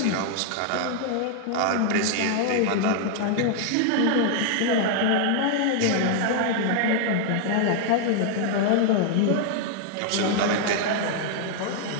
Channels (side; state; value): both; different; correlation 0.00